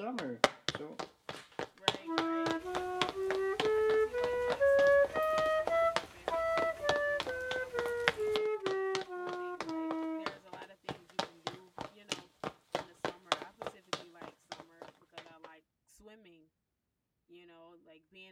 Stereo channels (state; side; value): identical; both; correlation 1.00